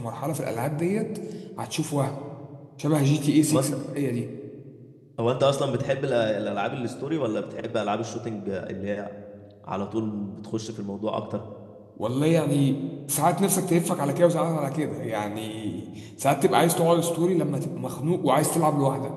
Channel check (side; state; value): both; identical; correlation 1.00